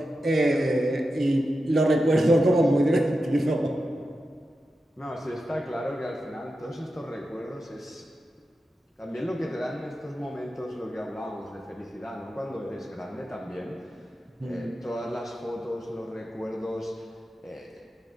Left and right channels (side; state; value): both; normal; correlation 0.90